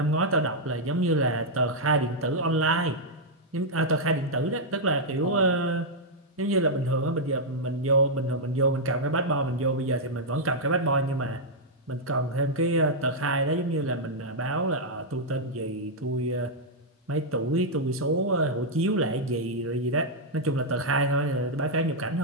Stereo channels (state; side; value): normal; both; correlation -0.05